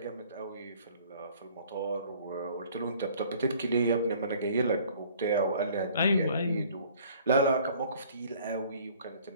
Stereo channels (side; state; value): both; inverted; correlation -0.54